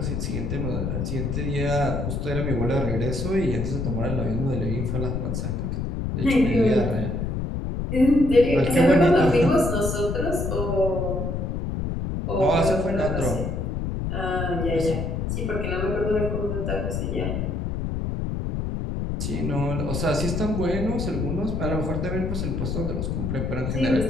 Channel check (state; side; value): noise; left; rumble, 2 dB below the sound